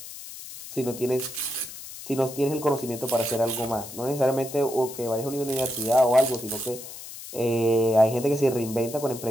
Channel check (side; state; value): left; noise; hiss, 13 dB below the sound